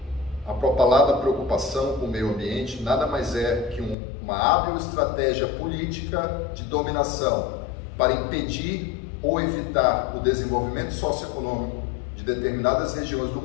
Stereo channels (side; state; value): right; drops out; at 4.0 s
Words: A propalada preocupação com o meio ambiente nada mais é que uma hábil estratégia política de dominação para impedir ou evitar o desenvolvimento socioeconômico de determinadas regiões do